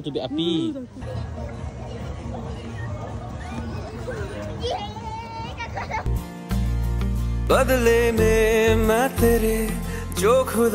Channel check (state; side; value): identical; both; correlation 1.00